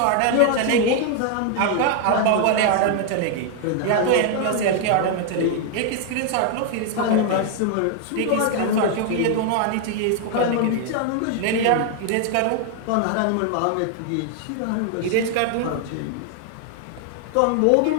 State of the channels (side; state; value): both; different; correlation 0.00